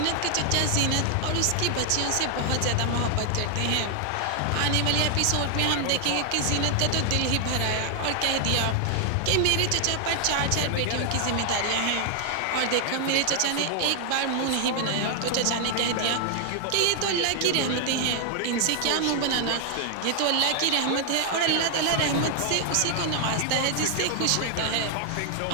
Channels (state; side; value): different; both; correlation 0.00